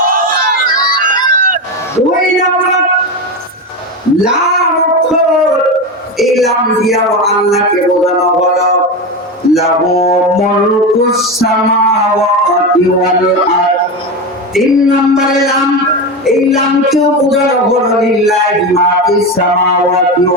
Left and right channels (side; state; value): both; normal; correlation 0.18